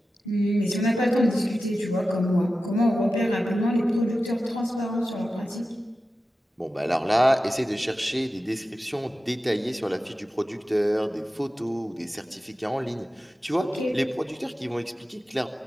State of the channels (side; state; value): both; normal; correlation 0.93